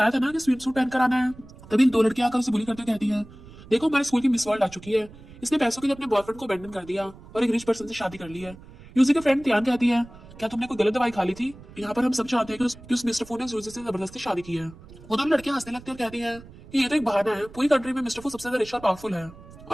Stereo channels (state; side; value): noise; right; rumble, 19 dB below the sound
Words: था ना कि स्विम सूट पहन कर आना है। तभी दो लड़कियां आकर उसे बुली करते कहती है देखो हमारे स्कूल की मिस वर्ल्ड आ चुकी है, इसने पैसों के लिए अपने बॉयफ्रेंड को अबैंडन कर दिया और एक रिच पर्सन से शादी कर ली है। यूजी के फ्रेंड त्यान कहती है क्या तुमने कोई गलत दवाई खा ली थी। यहाँ पर हम सब चाहते हैं कि उस मिस्टर फू ने यूजी से जबरदस्ती शादी की है। वो दोनों लड़कियां हंसने लगती है और कहती है कि ये तो एक बहाना है, पूरी कंट्री में मिस्टर फू सबसे ज्यादा रिच और पावरफुल है